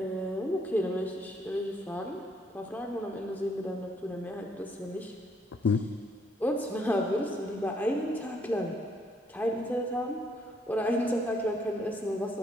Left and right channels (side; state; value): both; normal; correlation 0.69